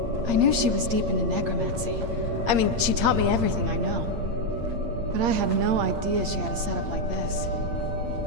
I knew she was deep into necromancy. I mean, she taught me everything I know. But I had no idea she had a setup like this.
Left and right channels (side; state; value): left; late; 8.7 ms